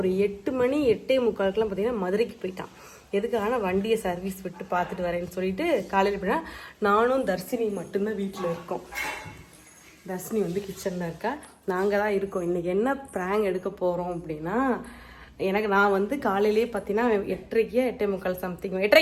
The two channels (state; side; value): identical; both; correlation 1.00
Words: 8 மணி 8:45 பார்த்தீங்கன்னா மதுரைக்கு போயிட்டான். எதுக்காக வண்டியை சர்வீஸ் விட்டு பார்த்துட்டு வரேன்னு சொல்லிட்டு காலையில் போயிட்டா. நானும் தர்ஷினி மட்டும்தான் வீட்டில் இருக்கோம். தர்ஷினி வந்து கிச்சனில் இருக்கா, நாங்கள் தான் இருக்கோம். இன்றைக்கி என்ன ப்ராங்க் எடுக்க போகிறோம் அப்படின்னா, நான் வந்து காலையிலேயே பார்த்தீங்கன்னா 8:30 8:45 சம்திங்